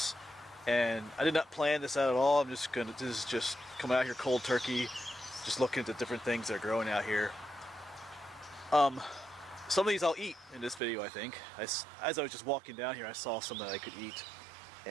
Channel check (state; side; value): drops out; left; at 10.8 s